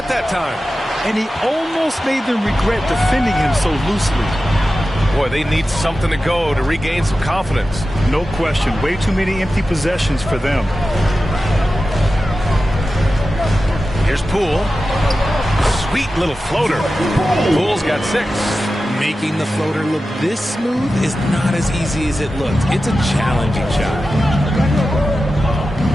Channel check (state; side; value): normal; both; correlation 0.93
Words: that time. And he almost made them regret defending him so loosely. Boy, they need something to go to regain some confidence. No question. Way too many empty possessions for them. Here's Poole. Sweet little floater. Poole's got 6. Making the floater look this smooth is not as easy as it looks. It's a challenging shot.